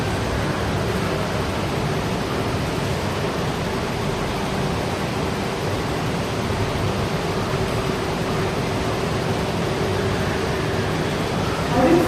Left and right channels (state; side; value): identical; both; correlation 1.00